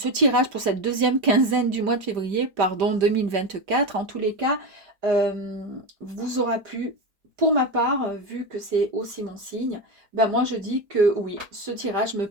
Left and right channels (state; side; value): late; left; 5.0 ms